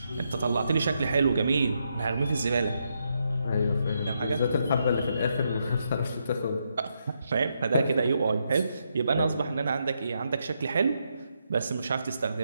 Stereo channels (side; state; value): both; inverted; correlation -0.80